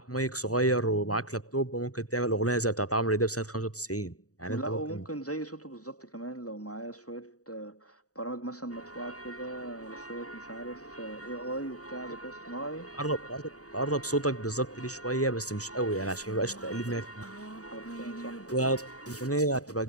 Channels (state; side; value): late; right; 0.66 ms